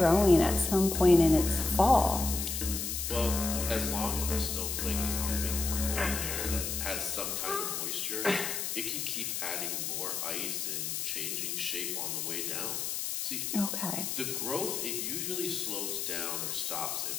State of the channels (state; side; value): noise; left; hiss, 2 dB below the sound